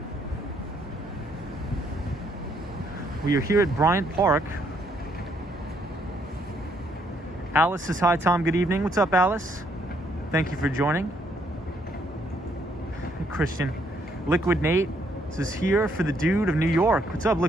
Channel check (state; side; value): normal; both; correlation 0.70